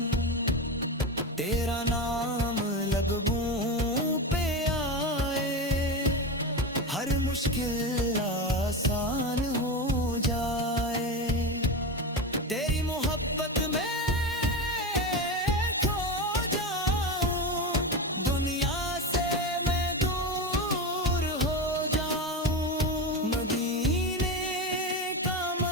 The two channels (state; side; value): normal; both; correlation 0.20